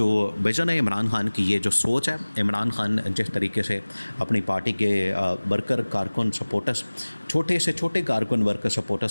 विज़न है, इमरान खान की ये जो सोच है, इमरान खान जिस तरीके से अपनी पार्टी के वर्कर, कारकुन, सपोर्टर्स, छोटे से छोटे कारकुन, वर्कर,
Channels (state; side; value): inverted; both; correlation -1.00